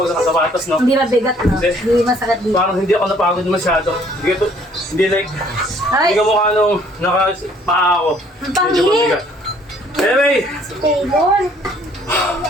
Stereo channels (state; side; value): normal; both; correlation 0.60